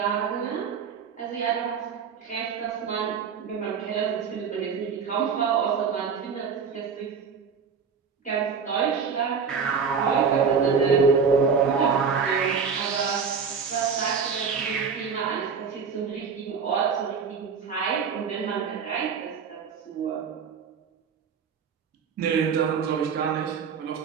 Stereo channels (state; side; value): quieter; left; 6.1 dB